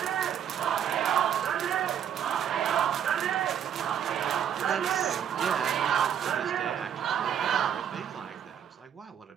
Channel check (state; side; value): quieter; left; 9.1 dB